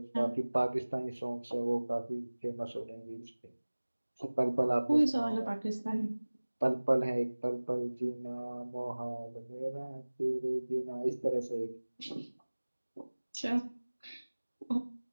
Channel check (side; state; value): both; inverted; correlation -1.00